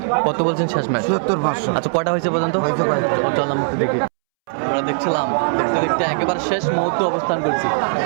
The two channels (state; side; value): silent; left; 66 dB below the other